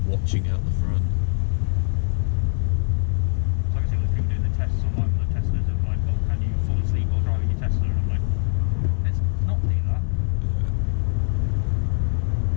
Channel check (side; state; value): right; silent; 57 dB below the other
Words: watching out the front? So I can see all the people doing the tests online with the Teslas of can you fall asleep while driving your Tesla? And I'm like, let's not do that. Yeah.